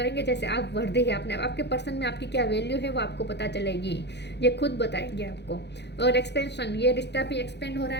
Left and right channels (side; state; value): right; late; 0.50 ms